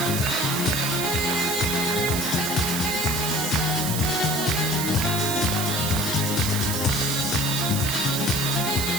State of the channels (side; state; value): right; noise; hiss, 3 dB below the sound